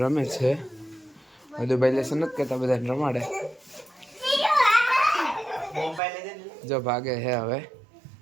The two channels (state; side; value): drops out; left; at 6.0 s